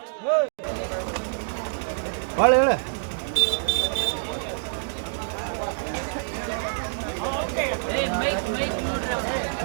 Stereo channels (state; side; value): silent; left; digital silence